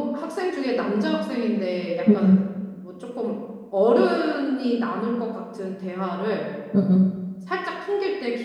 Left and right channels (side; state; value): both; identical; correlation 1.00